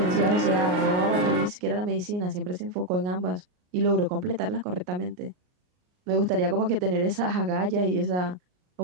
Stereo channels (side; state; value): left; late; 39 ms